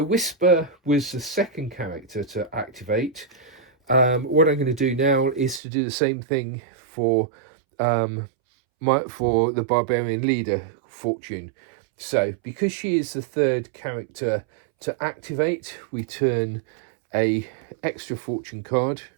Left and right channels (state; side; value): drops out; left; at 5.6 s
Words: Whisper was the second character to activate. What I'm going to do now is to do the same thing for the Barbarian leader, fortune. So because she is the third character to activate, we turn a extra fortune card